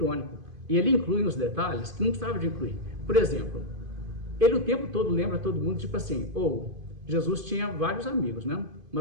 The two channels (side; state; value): left; late; 2.5 ms